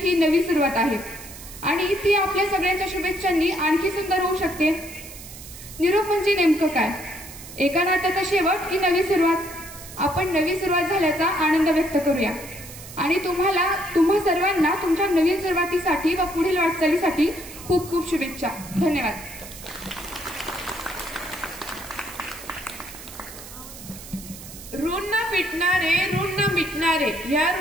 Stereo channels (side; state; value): right; noise; hiss, 15 dB below the sound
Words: नवी सुरुवात आहे आणि ती आपल्या सगळ्यांच्या शुभेच्छांनी आणखी सुंदर होऊ शकते. निरोप म्हणजे नेमकं काय? एका नात्याचा शेवट की नवी सुरुवात? आपण नवी सुरुवात झाल्याचा आनंद व्यक्त करूया आणि तुम्हा सर्वांना तुमच्या नवीन सुरुवातीसाठी व पुढील वाटचालीसाठी खूप खूप शुभेच्छा. धन्यवाद. ऋण न मिटणारे या